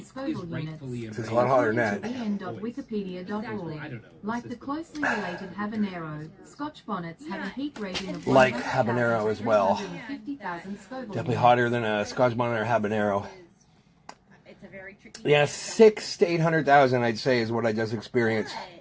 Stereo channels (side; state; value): both; identical; correlation 1.00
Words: Scoville units. It's a lot hotter than that. en.wikipedia.org. Like the closely related habanero, Scotch bonnets have a heat rating of Like habanero as well. 150,000 Scoville Definitely units. hotter than a Scotch bonnet or habanero. It's a very tricky. Yeah, 600,000 to 800,000, I'd say, is what I just experienced.